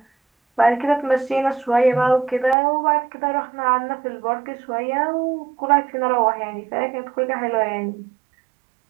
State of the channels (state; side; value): drops out; left; at 2.6 s